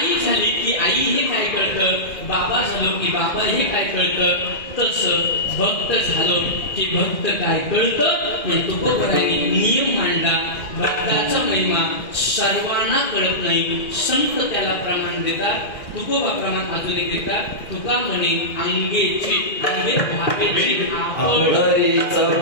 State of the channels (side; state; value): right; late; 1.6 ms